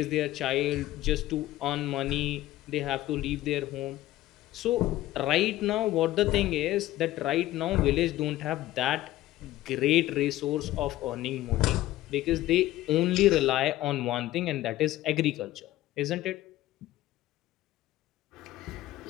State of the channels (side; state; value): right; quieter; 15.6 dB